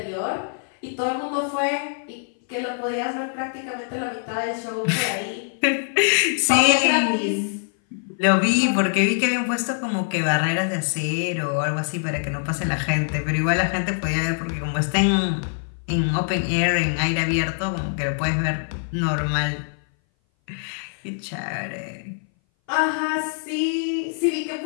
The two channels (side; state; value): right; silent; 59 dB below the other